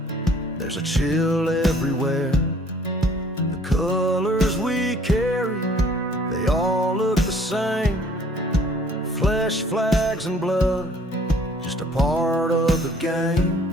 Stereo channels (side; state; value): both; normal; correlation 0.57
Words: there's a chill everywhere. The colors we carry, they all look the same. Flesh, flags, and blood, just a part of the game.